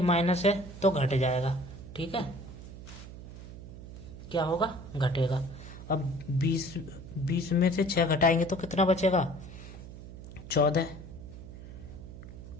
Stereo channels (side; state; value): right; noise; hum, 13 dB below the sound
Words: माइनस है तो घट जाएगा, ठीक है। क्या होगा, घटेगा। अब 20 में से 6 घटाएंगे तो कितना बचेगा, 14।